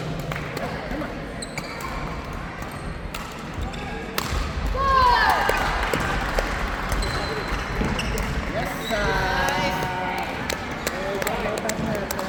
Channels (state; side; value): identical; both; correlation 1.00